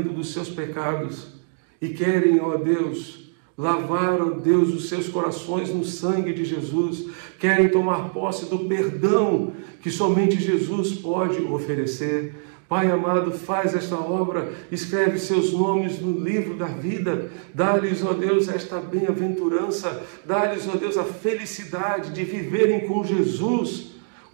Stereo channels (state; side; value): silent; left; digital silence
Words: dos seus pecados e querem, ó Deus, lavar, ó Deus, os seus corações no sangue de Jesus, querem tomar posse do perdão que somente Jesus pode oferecer. Pai amado, faz esta obra, escreve seus nomes no livro da vida, dá-lhes, ó Deus, esta bem-aventurança, dá-lhes, ó Deus, a felicidade de viverem com Jesus